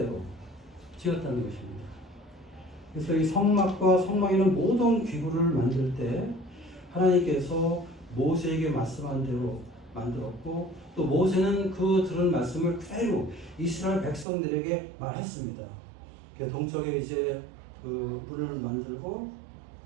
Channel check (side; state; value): left; drops out; at 14.2 s